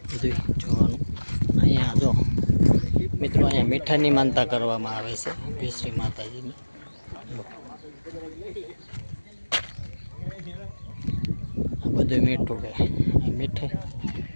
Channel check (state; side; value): inverted; both; correlation -1.00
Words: બધું જોવાનું. અહીંયા જો મિત્રો, અહીંયા મીઠાની માનતા કરવામાં આવે છે ભેશ્રી માતાજીની. આ બધું મીઠું છે,